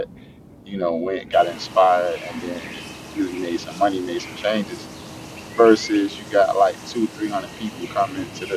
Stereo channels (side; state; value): both; identical; correlation 1.00